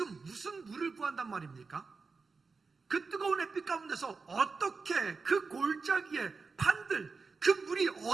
무슨 물을 구한단 말입니까? 그 뜨거운 햇빛 가운데서 어떻게 그 골짜기에 판들, 그 물이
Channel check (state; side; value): quieter; left; 4.5 dB